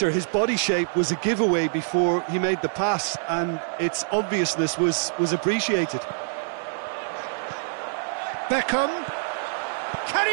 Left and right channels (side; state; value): left; silent; 62 dB below the other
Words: his body shape was a giveaway before he made the pass, and its obviousness was appreciated. Beckham, can